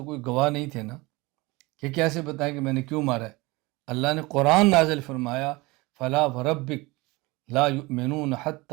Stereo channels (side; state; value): left; quieter; 23.1 dB